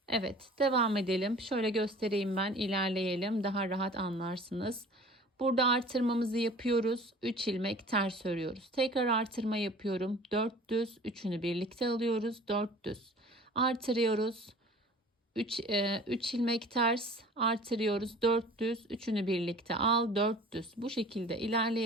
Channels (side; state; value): both; normal; correlation 0.45